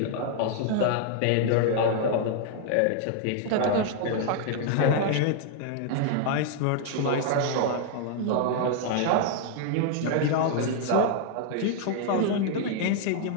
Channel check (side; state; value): both; different; correlation 0.00